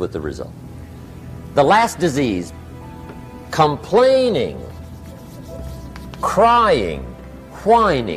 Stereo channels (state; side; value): identical; both; correlation 1.00